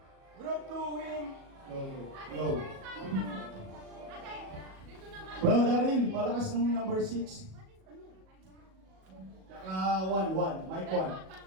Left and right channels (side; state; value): left; late; 37 ms